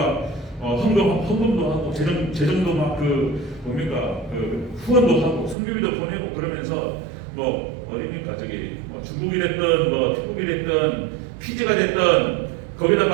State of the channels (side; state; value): left; drops out; at 5.6 s